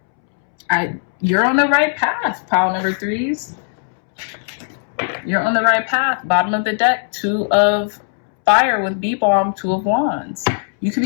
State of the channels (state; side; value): silent; right; 67 dB below the other